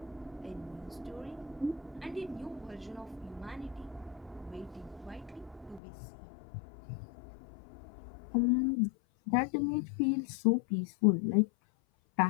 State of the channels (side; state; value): right; drops out; at 5.8 s